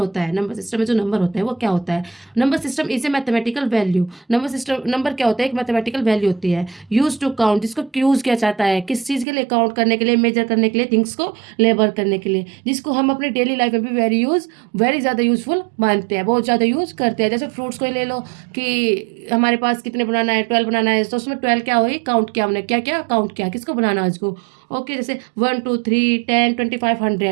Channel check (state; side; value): drops out; left; at 9.2 s